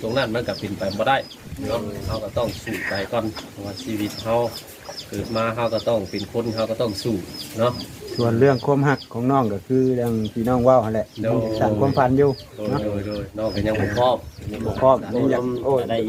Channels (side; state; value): both; identical; correlation 1.00